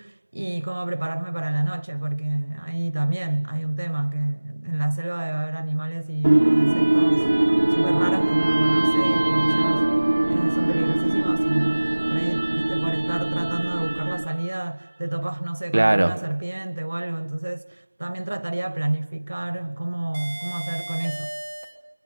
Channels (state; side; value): inverted; both; correlation -1.00